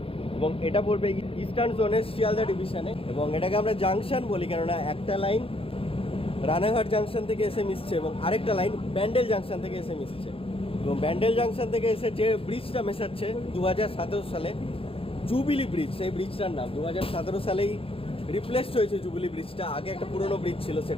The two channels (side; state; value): right; late; 0.27 ms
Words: এবং এটা পড়বে ইস্টার্ন জোনের শিয়ালদা ডিভিশনে, এবং এটাকে আমরা জাংশন বলি কেননা একটা লাইন রানাঘাট জাংশন থেকে এসে মিশছে এবং আরেকটা লাইন ব্যান্ডেল জাংশন থেকে এসে মিশছে। এবং ব্যান্ডেল জাংশন থেকে এসে যে ব্রিজটা মেশাচ্ছে 2017 সালে জুবিলি ব্রিজ, সেই ব্রিজটার নাম 2017 সালেই রিপ্লেসড হয়েছে জুবিলি ব্রিজটা। আগে একটা পুরনো ব্রিজ ছিল